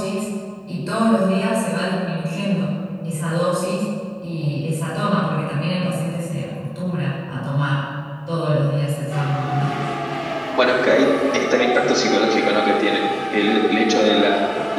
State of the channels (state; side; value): identical; both; correlation 1.00